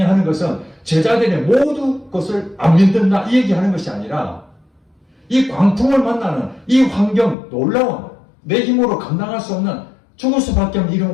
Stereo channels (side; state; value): right; drops out; at 7.4 s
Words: 하는 것은 제자들의 모두 것을 안 믿는다 이 얘기하는 것이 아니라 이 광풍을 만나는 이 환경, 놀라운 내 힘으로 감당할 수 없는 죽을 수밖에 없는